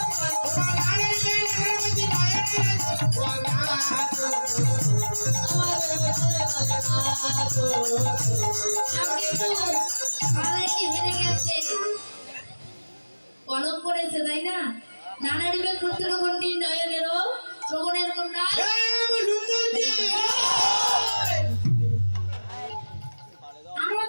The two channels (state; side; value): inverted; both; correlation -1.00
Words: কলম করেছে, তাই না? নানা দিবে ক্ষুদ্র ঘন্টি নয়নেরও শ্রবণের কুণ্ডল। আরো